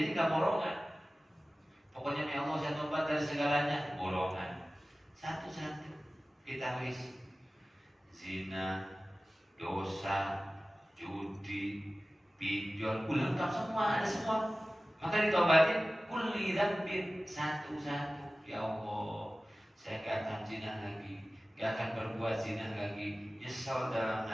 nggak borongan. Pokoknya ya Allah saya tobat dari segalanya, borongan. Satu-satu kita list. Zina, dosa, judi, pinjol, lengkap semua, ada semua. Maka ditobatin kulli dzambin satu-satu. Ya Allah, saya gak akan zina lagi, gak akan berbuat zina lagi. Nyesal dalam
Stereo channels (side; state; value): both; normal; correlation 0.97